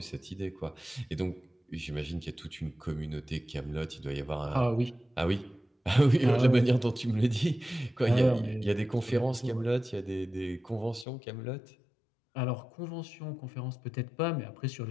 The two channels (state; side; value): drops out; right; at 11.1 s